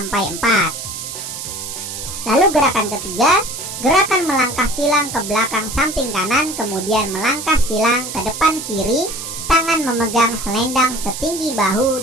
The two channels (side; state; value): right; noise; hiss, 8 dB below the sound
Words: 4. Lalu gerakan ketiga, gerakan melangkah silang ke belakang samping kanan, kemudian melangkah silang ke depan kiri, tangan memegang selendang setinggi